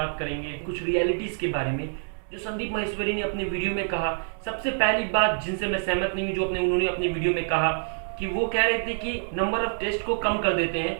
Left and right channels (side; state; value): left; silent; digital silence